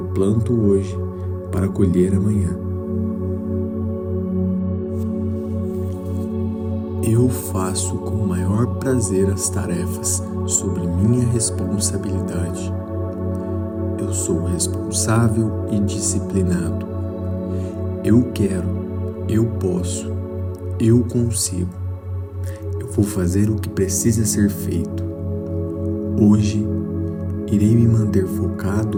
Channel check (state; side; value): identical; both; correlation 1.00